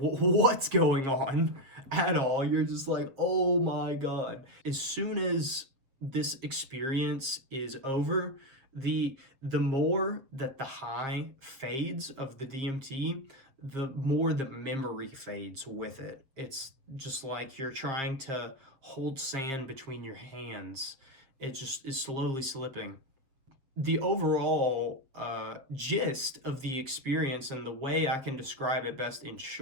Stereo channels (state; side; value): late; left; 7.5 ms